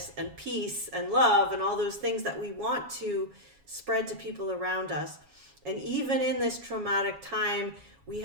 and peace and love and all those things that we want to spread to people around us. And even in this traumatic time, we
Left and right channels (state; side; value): late; left; 7.2 ms